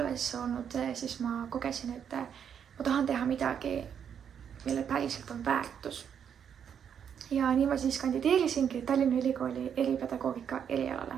olnud, siis ma kogesin, et ma tahan teha midagi, mille päriselt on väärtus. Ja nii ma siis kandideerisingi Tallinna Ülikooli eripedagoogika erialale.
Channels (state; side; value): quieter; left; 8.1 dB